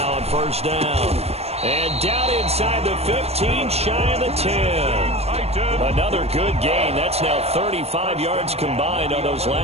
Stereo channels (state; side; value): late; left; 0.30 ms